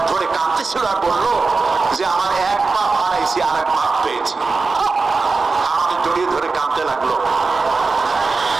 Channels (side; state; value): left; quieter; 4.2 dB